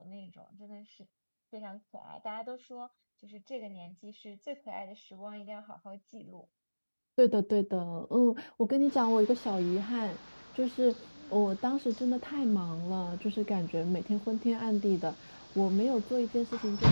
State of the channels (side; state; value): both; inverted; correlation -1.00